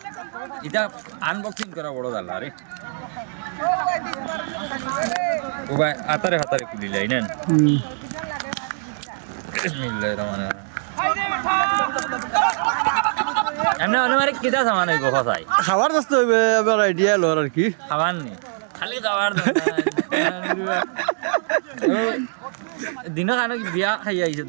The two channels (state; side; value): silent; left; 64 dB below the other